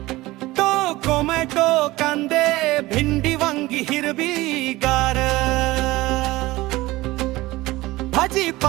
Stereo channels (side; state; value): left; quieter; 19.1 dB